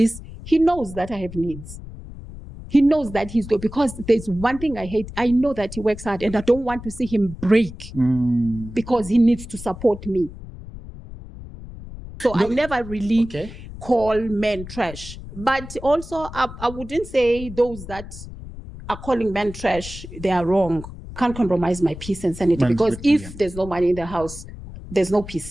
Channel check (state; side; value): noise; left; rumble, 13 dB below the sound